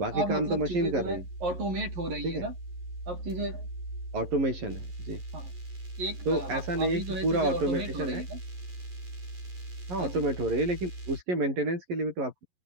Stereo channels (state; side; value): late; left; 11 ms